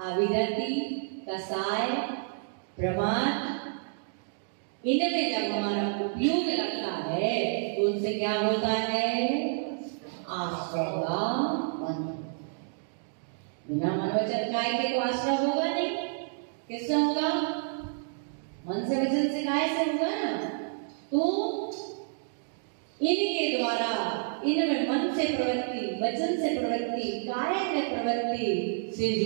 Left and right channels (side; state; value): left; silent; digital silence